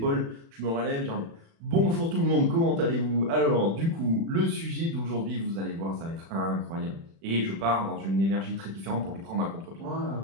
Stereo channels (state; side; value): late; left; 36 ms